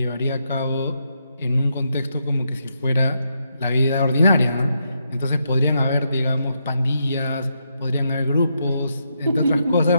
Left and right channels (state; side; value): inverted; both; correlation -0.81